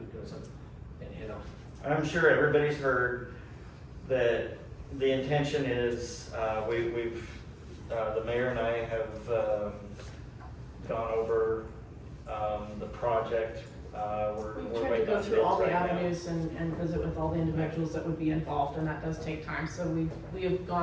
doesn't, and hit them. I'm sure everybody's heard that the intention is, the mayor and I have, gone over, the project, introduce and visit with all the individuals that would be involved, and that does take time. So we have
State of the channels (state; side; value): identical; both; correlation 1.00